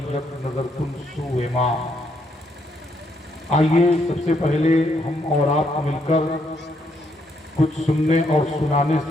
یک نظر کن سوئے ماں۔ آئیے سب سے پہلے ہم اور آپ مل کر کچھ سننے اور سنانے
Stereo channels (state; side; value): normal; both; correlation 0.74